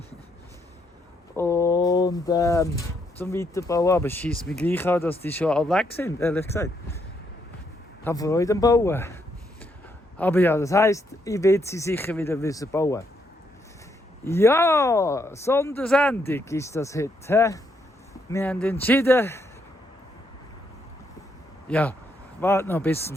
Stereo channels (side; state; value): both; normal; correlation 0.76